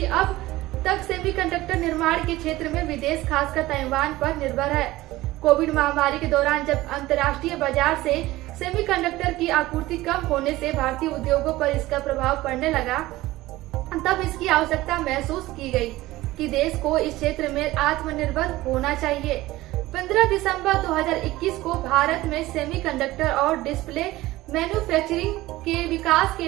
अब तक सेमीकंडक्टर निर्माण के क्षेत्र में विदेश, खासकर ताइवान पर निर्भर है। कोविड महामारी के दौरान जब अंतर्राष्ट्रीय बाजार से सेमीकंडक्टर की आपूर्ति कम होने से भारतीय उद्योगों पर इसका प्रभाव पड़ने लगा, तब इसकी आवश्यकता महसूस की गई कि देश को इस क्षेत्र में आत्मनिर्भर होना चाहिए। 15 दिसंबर 2021 को भारत में सेमीकंडक्टर और डिस्प्ले मैन्युफैक्चरिंग के विकास के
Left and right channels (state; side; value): quieter; left; 17.7 dB